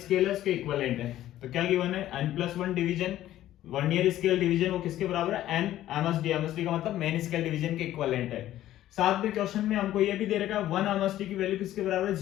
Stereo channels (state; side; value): quieter; right; 13.4 dB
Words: है उसके इक्विवेलेंट है। तो क्या गिवन है, n+1 division vernier scale division वो किसके बराबर है, n MSD। MSD का मतलब मेन स्केल डिवीजन के इक्विवेलेंट है। साथ में क्वेश्चन में हमको ये भी दे रखा है 1 MSD की वैल्यू किसके बराबर है,